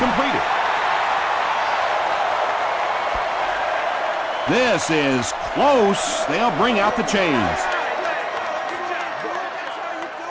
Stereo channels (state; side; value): identical; both; correlation 1.00